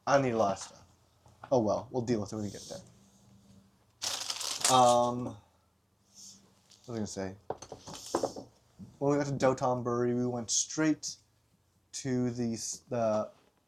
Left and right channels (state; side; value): identical; both; correlation 1.00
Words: I need a lot of stuff. Oh well, we'll deal with it when we get there. What was I gonna say? When we got to Dotonbori, we went straight to the